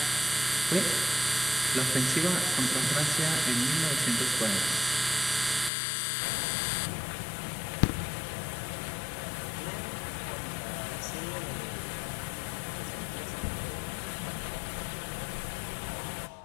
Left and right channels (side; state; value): right; drops out; at 5.7 s